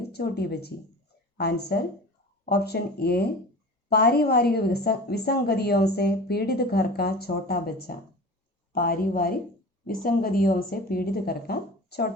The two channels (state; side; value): normal; both; correlation 0.37